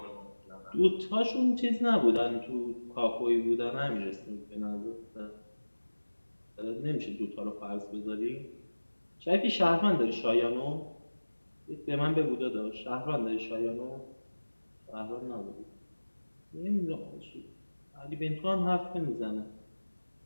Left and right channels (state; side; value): inverted; both; correlation -1.00